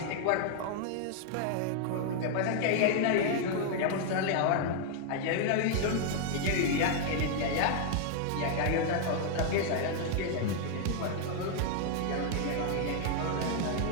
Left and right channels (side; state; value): both; different; correlation 0.00